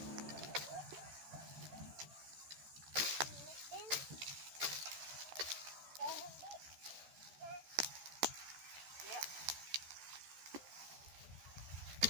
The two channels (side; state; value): left; late; 13 ms